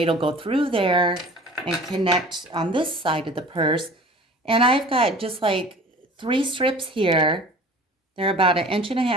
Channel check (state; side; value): normal; both; correlation 0.44